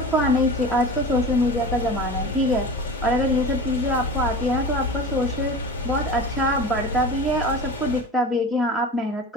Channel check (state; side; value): normal; both; correlation 0.33